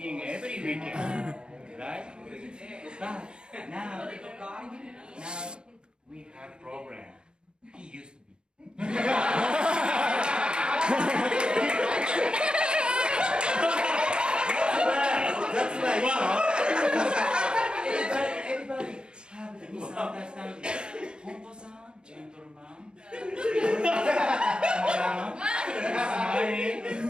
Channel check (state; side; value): late; left; 0.050 ms